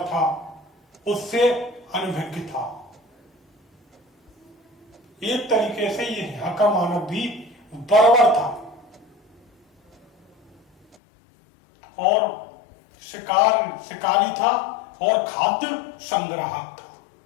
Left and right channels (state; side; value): drops out; right; at 11.0 s